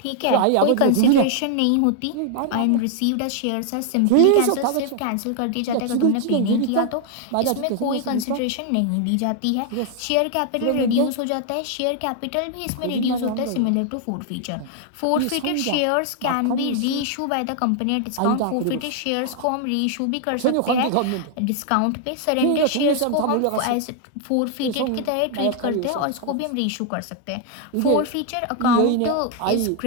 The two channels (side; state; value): both; different; correlation 0.00